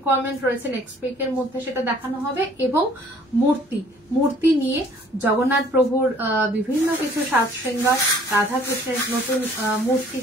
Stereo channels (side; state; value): both; normal; correlation 0.57